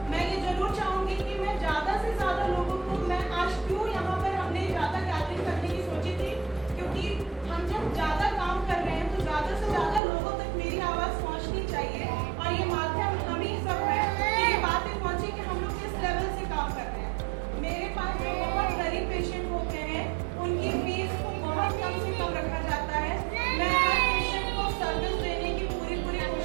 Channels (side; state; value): left; drops out; at 10.0 s